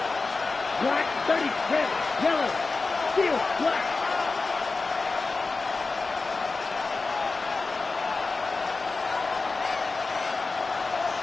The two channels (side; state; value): right; quieter; 3.9 dB